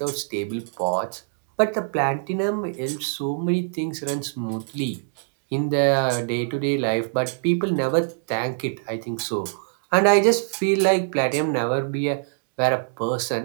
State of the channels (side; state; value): left; silent; digital silence